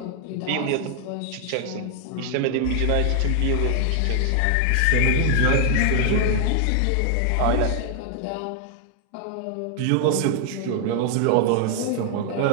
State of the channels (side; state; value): both; different; correlation 0.00